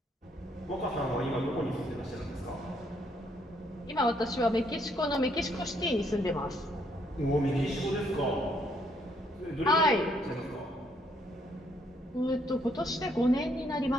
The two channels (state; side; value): normal; both; correlation 0.70